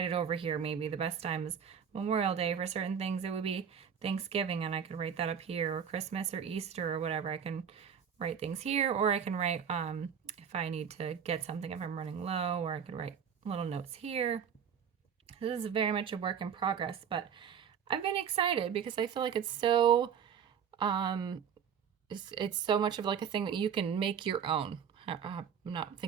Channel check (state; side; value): quieter; left; 7.6 dB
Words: it over here. Maybe the best time is Memorial Day. For certain things it would be Thanksgiving, and I could write that up here, or Christmas or Easter or whatever. I can write things here, or I can write if I need to get something, if I'm running low, or I could write little notes here. This is very much a work in progress, but I've been excited because I feel like it's so it's so much of like a thing that you can make your own. I'm not